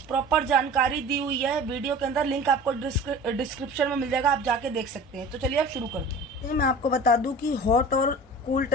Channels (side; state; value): both; normal; correlation 0.40